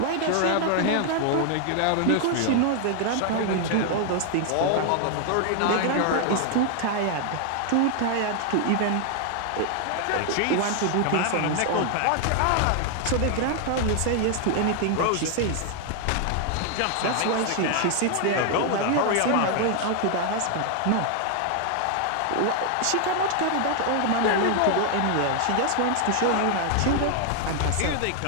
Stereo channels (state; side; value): different; both; correlation 0.00